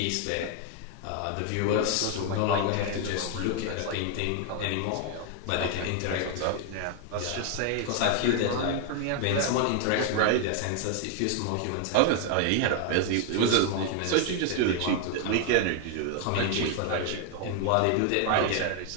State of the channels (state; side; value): different; both; correlation 0.00